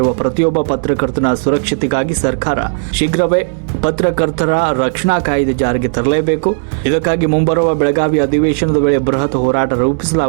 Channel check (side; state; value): left; silent; 71 dB below the other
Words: ಪ್ರತಿಯೊಬ್ಬ ಪತ್ರಕರ್ತನ ಸುರಕ್ಷತೆಗಾಗಿ ಸರ್ಕಾರ ಶೀಘ್ರವೇ ಪತ್ರಕರ್ತರ ರಕ್ಷಣಾ ಕಾಯ್ದೆ ಜಾರಿಗೆ ತರಲೇಬೇಕು. ಇದಕ್ಕಾಗಿ ಮುಂಬರುವ ಬೆಳಗಾವಿ ಅಧಿವೇಶನದ ವೇಳೆ ಬೃಹತ್ ಹೋರಾಟ